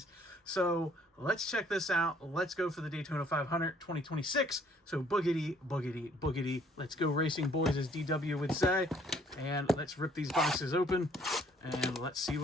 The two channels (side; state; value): both; normal; correlation 0.61